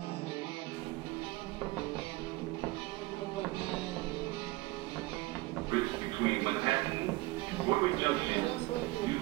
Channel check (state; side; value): quieter; left; 21.3 dB